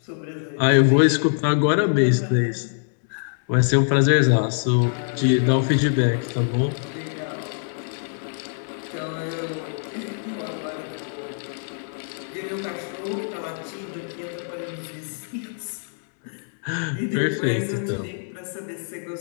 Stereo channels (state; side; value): silent; right; digital silence